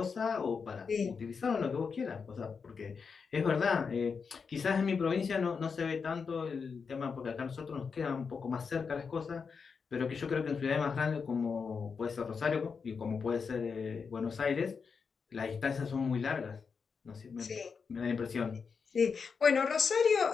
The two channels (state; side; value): quieter; right; 5.6 dB